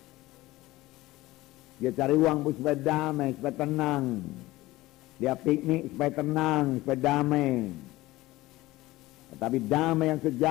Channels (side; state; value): right; quieter; 18.3 dB